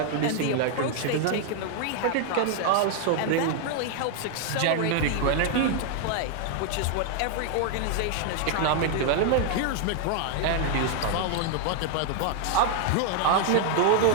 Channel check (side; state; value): both; different; correlation 0.00